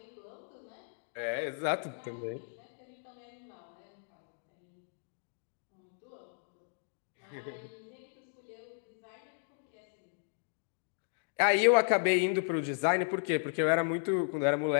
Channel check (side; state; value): right; silent; digital silence